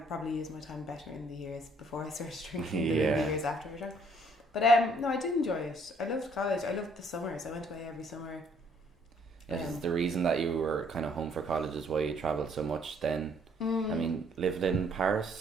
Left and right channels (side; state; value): both; normal; correlation 0.64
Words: probably used my time better in the years before I started drinking than in the years after I drank. But no, I did enjoy it. I loved college. I loved the summers. I went away every summer. Is the reason that you were kind of home for college is why you travelled so much then? I mean, lived in